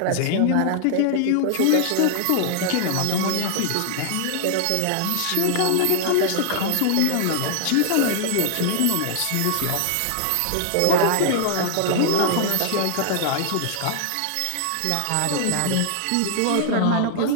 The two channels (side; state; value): both; different; correlation 0.00